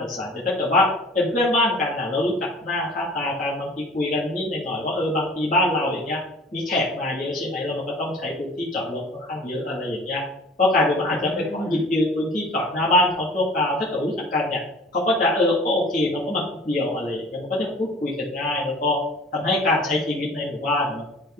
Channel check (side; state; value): both; normal; correlation 0.45